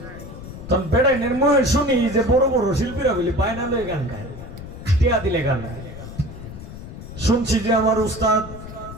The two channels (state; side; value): noise; left; rumble, 12 dB below the sound